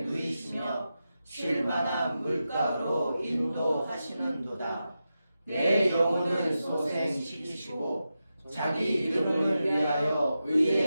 누이시며 쉴만한 물가로 인도하시는도다. 내 영혼을 소생시키시고 자기 이름을 위하여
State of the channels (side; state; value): both; inverted; correlation -0.90